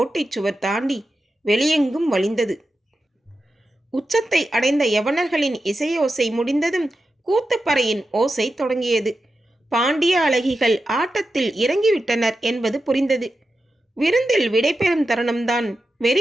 சுவர் தாண்டி வெளியெங்கும் வழிந்தது. உச்சத்தை அடைந்த யவனர்களின் இசையோசை முடிந்ததும் கூத்துப்பறையின் ஓசை தொடங்கியது. பாண்டிய அழகிகள் ஆட்டத்தில் இறங்கிவிட்டனர் என்பது புரிந்தது. விருந்தில் விடைபெறும் தருணம்தான்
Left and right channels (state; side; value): normal; both; correlation 0.90